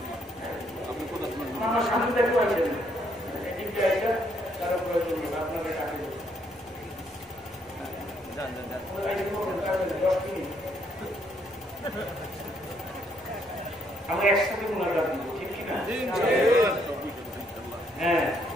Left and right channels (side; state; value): both; normal; correlation 0.71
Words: আমার সামনে দেখতে পাচ্ছেন তারা প্রয়োজন আপনাকে ডাকে আমরা একসাথে মোনাজাত দিব, ঠিক কিনা? হ্যাঁ,